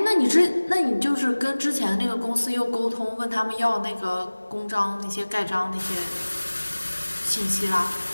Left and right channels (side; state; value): both; inverted; correlation -1.00